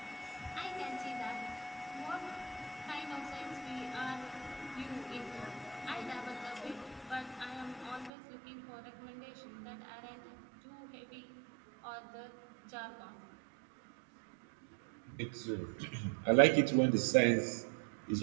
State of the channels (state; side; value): drops out; left; at 8.1 s